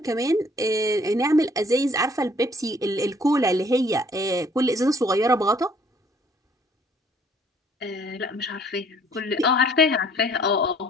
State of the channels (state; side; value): normal; both; correlation 0.59